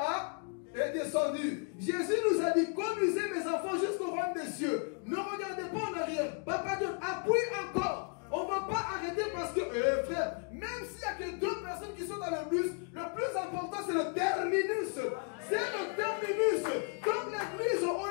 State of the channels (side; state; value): right; quieter; 38.1 dB